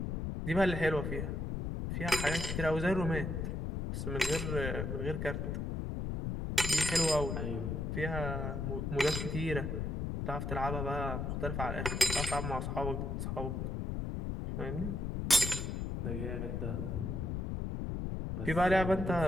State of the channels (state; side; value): noise; left; rumble, 2 dB below the sound